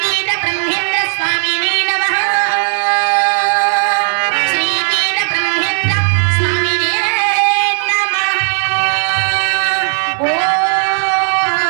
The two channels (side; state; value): left; silent; 65 dB below the other